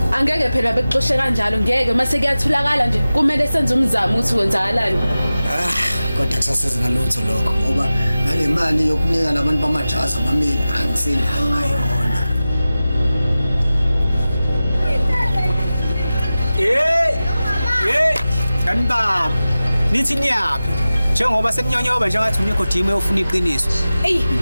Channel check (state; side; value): inverted; both; correlation -0.96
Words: Angeke phela bekuxoshe kanjalo ngeke mase kuyatholakala nje kumele senze umzamo ukuthi kwenzakalani. Kodwa kusasiza ngalutho lokho ngoba ngale mali yokunika labantu bamajazi amamili angisenayo ngayona. Kanibaba nithi niyaphi njengoba sekunyonyoba njengathi unikho team eyofuna iqiniso. Ey